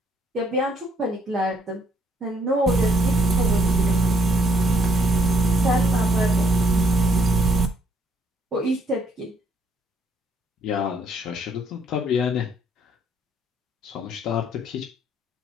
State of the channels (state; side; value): normal; both; correlation 0.67